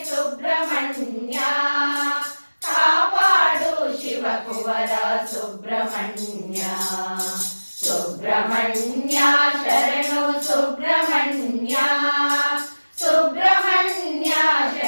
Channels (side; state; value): both; inverted; correlation -1.00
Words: ಸುಬ್ರಹ್ಮಣ್ಯ, ಕಾಪಾಡು ಶಿವಕುವರ ಸುಬ್ರಹ್ಮಣ್ಯ. ಸುಬ್ರಹ್ಮಣ್ಯ ಶರಣು ಸುಬ್ರಹ್ಮಣ್ಯ, ಸುಬ್ರಹ್ಮಣ್ಯ